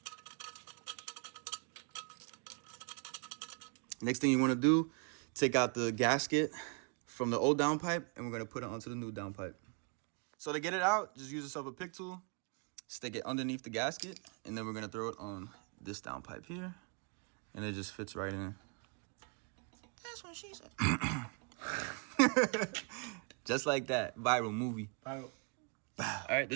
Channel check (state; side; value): quieter; left; 36.6 dB